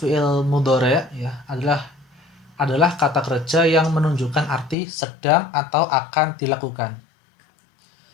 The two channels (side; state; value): right; drops out; at 4.8 s